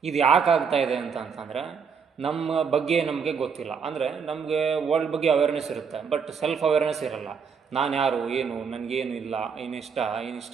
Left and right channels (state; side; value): quieter; left; 6.2 dB